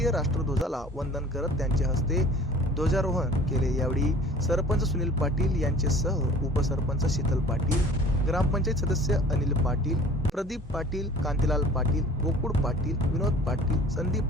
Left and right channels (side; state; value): both; normal; correlation 0.48